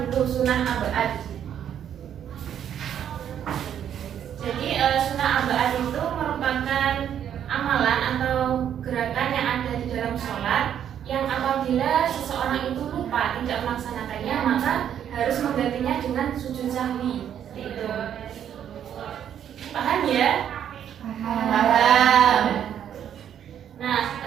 dulu, sunnah abad. Jadi sunnah abad itu merupakan amalan atau gerakan yang ada di dalam sholat yang apabila seseorang itu lupa tidak melaksanakannya, maka harus menggantinya dengan sujud sahwi. Seperti itu. Paham ya? Paham. Nah,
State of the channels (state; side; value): quieter; left; 9.5 dB